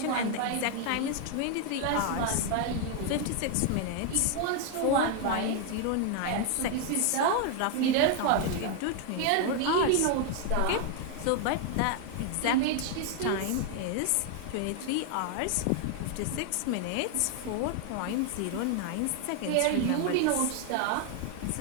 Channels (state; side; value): different; both; correlation 0.00